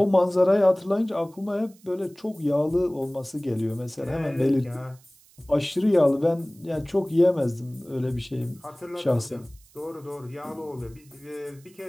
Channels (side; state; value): right; noise; hiss, 28 dB below the sound